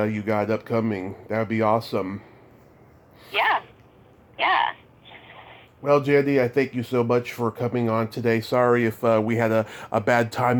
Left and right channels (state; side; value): identical; both; correlation 1.00